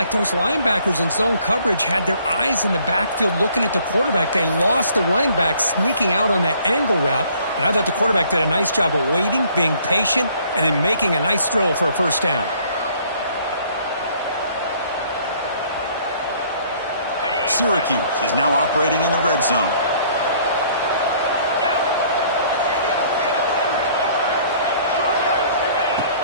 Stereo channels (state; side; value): inverted; both; correlation -0.59